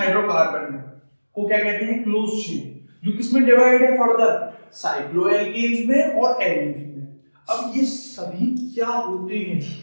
को क्या कहते हैं? क्लोज चेन, जो किसमें डिवाइड है फर्दर? साइक्लोएल्केन्स में और एल्कीन्स में। अब ये सभी क्या होते हैं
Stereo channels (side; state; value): both; inverted; correlation -1.00